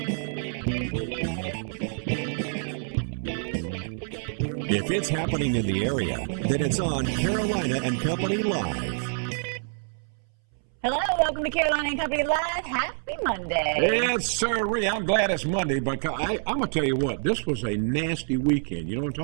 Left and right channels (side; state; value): left; silent; 60 dB below the other